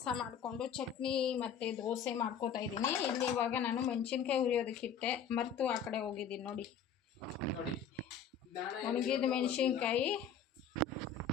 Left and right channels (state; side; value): quieter; right; 7.0 dB